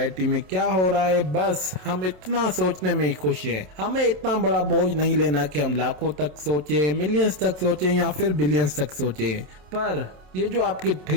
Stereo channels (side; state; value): left; late; 27 ms